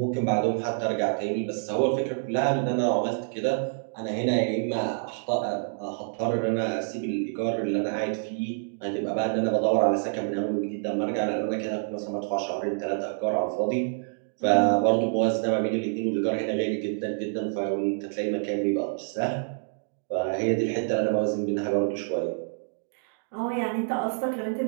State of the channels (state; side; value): silent; left; digital silence